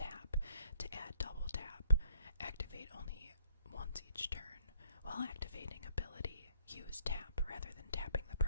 to add double tap, activate only once each turn. While activating ability, use tap rather than tapping the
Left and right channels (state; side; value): inverted; both; correlation -0.63